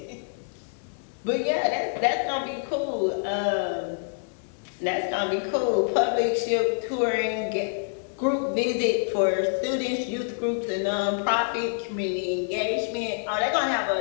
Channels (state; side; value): silent; right; 60 dB below the other